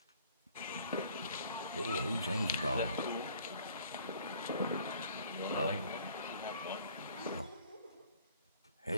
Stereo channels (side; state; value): both; inverted; correlation -0.55